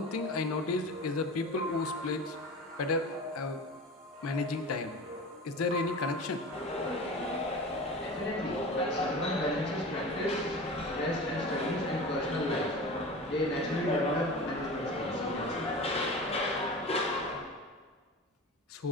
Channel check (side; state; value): both; normal; correlation 0.32